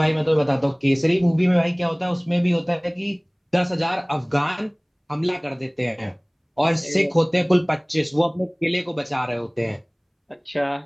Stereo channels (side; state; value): both; identical; correlation 1.00